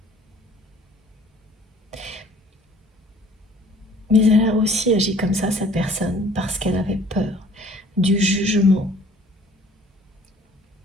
Mais elle a aussi agi comme ça, cette personne, parce qu'elle avait peur du jugement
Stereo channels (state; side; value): normal; both; correlation 0.53